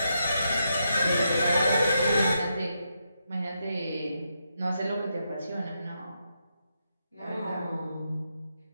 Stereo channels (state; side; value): inverted; both; correlation -0.82